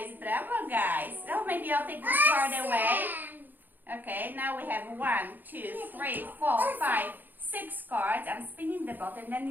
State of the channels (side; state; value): left; late; 0.088 ms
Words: Bravo, guys. Oh, maybe I'll take this card away. Okay, now we have 1, 2, 3, 4, 5, 6 cards. I'm spinning the bottle and then